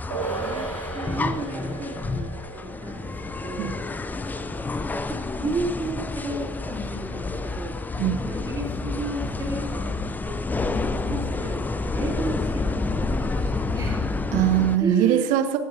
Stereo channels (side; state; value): both; normal; correlation 0.52